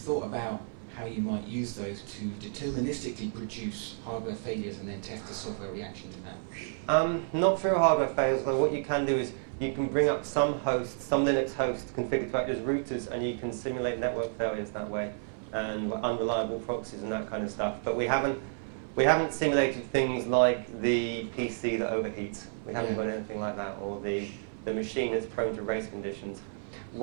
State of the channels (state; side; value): silent; left; 57 dB below the other